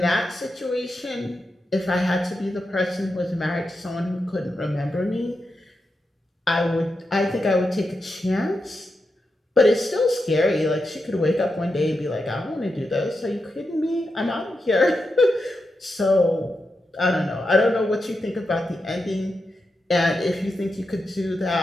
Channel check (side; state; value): both; normal; correlation 0.87